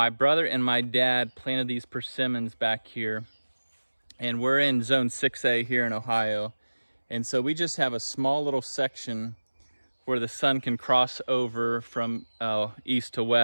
brother and my dad planted these persimmons back here, and we're in zone 6A here in Ohio. And so we just have a small little section where the sun can cross over from east to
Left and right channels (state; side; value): inverted; both; correlation -1.00